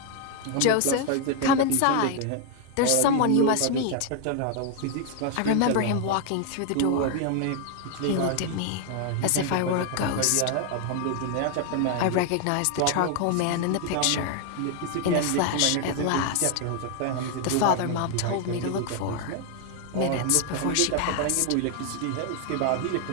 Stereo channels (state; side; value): different; both; correlation 0.00